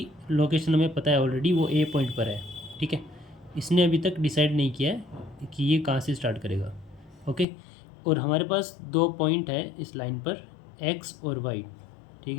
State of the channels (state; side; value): drops out; right; at 7.5 s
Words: लोकेशन हमें पता है ऑलरेडी, वो ए पॉइंट पर है, ठीक है। इसने अभी तक डिसाइड नहीं किया है कि ये कहाँ से स्टार्ट करेगा, ओके। और हमारे पास दो पॉइंट है इस लाइन पर, एक्स और वाई, ठीक